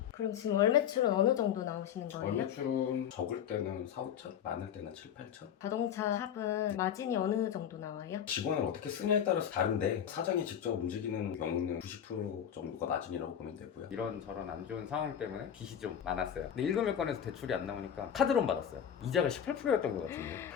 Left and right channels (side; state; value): right; quieter; 9.0 dB